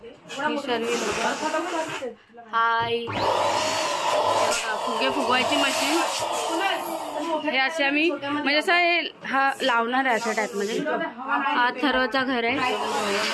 हाय, फुगे फुगवायची मशीन हे असे आम्ही म्हणजे असं हे हा लावणार आहे अशा टाईप मध्ये. हा थर्वचा घर आहे.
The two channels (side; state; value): both; identical; correlation 1.00